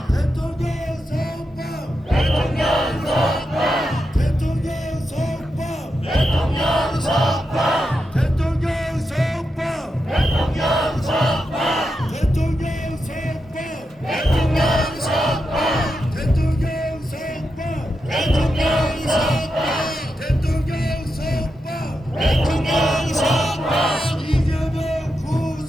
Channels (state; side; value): normal; both; correlation 0.87